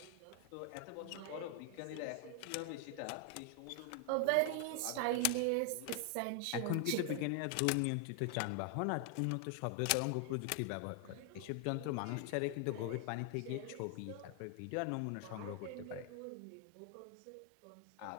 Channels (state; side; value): different; both; correlation 0.00